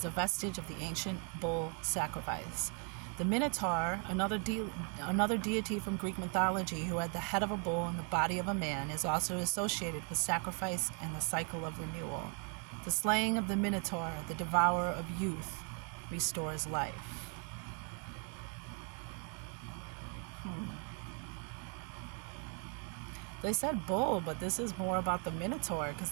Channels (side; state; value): left; quieter; 37.2 dB